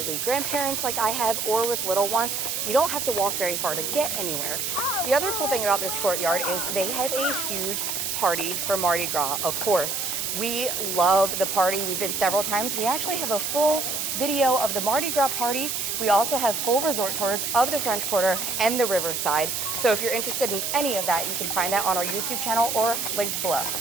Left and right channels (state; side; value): noise; right; hiss, 2 dB below the sound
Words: grandparents like I have, or with little ones, you don't have to walk very far to get anywhere. The other cool thing about this courtyard is they have a huge party for Mardi Gras, of course. We love the party. We've been several times. We actually have a full video of the Mardi Gras party. We also have full resort tours of the French Quarter and the Riverside. So if you're interested in any of that, you can find that on our YouTube channel or linked below.